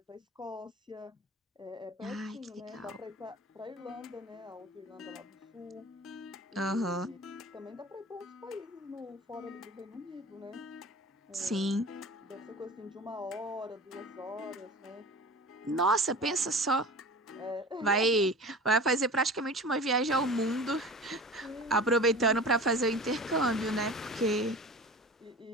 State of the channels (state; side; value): normal; both; correlation 0.37